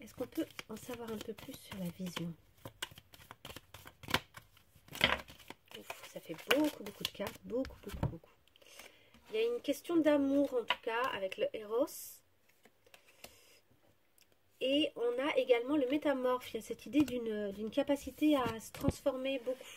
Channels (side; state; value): both; identical; correlation 1.00